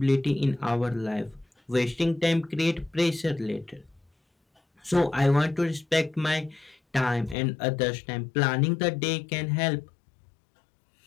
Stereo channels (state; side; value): drops out; right; at 7.4 s